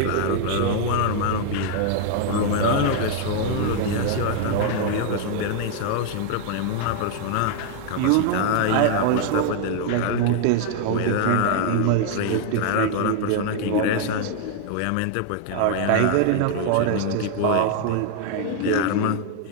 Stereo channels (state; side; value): different; both; correlation 0.00